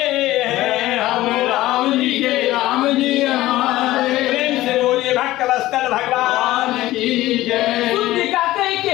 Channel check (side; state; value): right; quieter; 16.3 dB